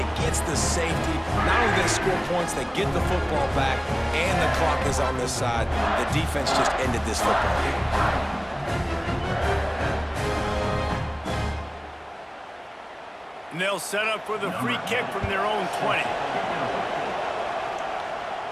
gets the safety. Not only do they score points, they get the football back, and the clock is on this side. The defense just ended this football game. And they'll set up for the free kick from their own 20.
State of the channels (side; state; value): both; identical; correlation 1.00